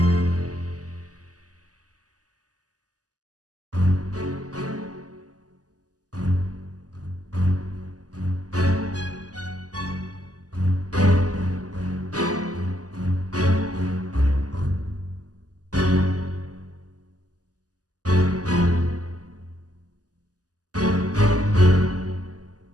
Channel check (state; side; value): late; left; 0.67 ms